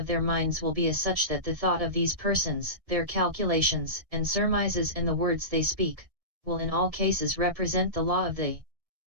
their minds will be as such that the thought of these persons, their calculations and surmises and the words they speak, will in all cases represent the law of the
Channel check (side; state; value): left; late; 1.7 ms